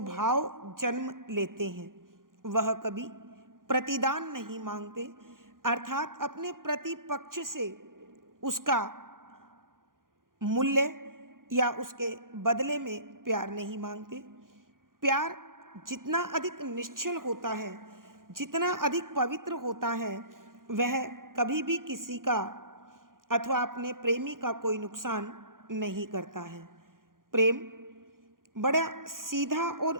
भाव जन्म लेते हैं वह कभी प्रतिदान नहीं मांगते, अर्थात अपने प्रतिपक्ष से उसका मूल्य या उसके बदले में प्यार नहीं मांगते। प्यार जितना अधिक निश्चल होता है, जितना अधिक पवित्र होता है, वह कभी भी किसी का अथवा अपने प्रेमी का कोई नुकसान नहीं करता है। प्रेम बड़ा सीधा और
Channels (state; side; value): late; left; 0.90 ms